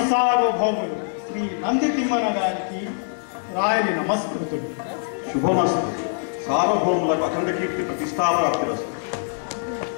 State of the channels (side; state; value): right; silent; 63 dB below the other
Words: సార్వభౌములు శ్రీ నంది తిమ్మన గారికి రాయలి నమస్కృతుడు. శుభమస్తు. సార్వభౌములకు అఖండ కీర్తి ప్రతిష్టాప్రాప్తిరస్తు.